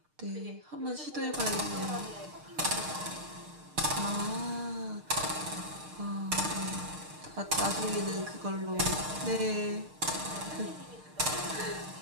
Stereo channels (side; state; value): left; late; 6.5 ms